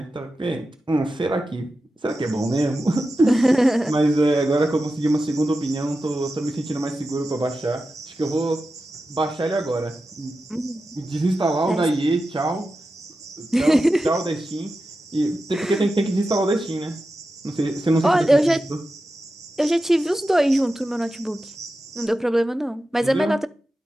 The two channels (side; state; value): both; normal; correlation 0.92